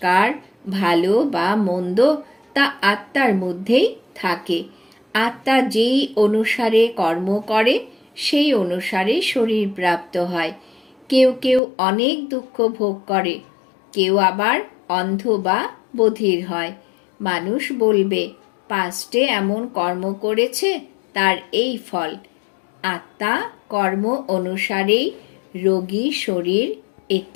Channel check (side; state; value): right; drops out; at 11.6 s